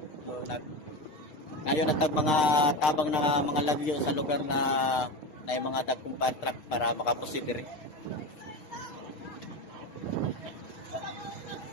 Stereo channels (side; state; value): right; late; 6.6 ms